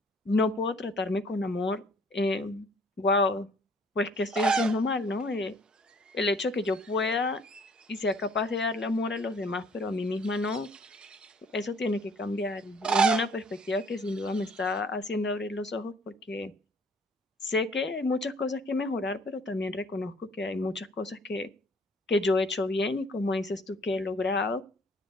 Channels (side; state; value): both; normal; correlation 0.57